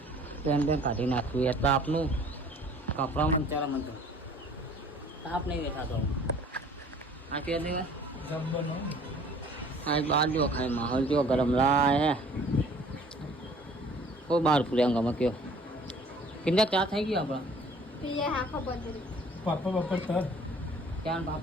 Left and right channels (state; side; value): normal; both; correlation 0.52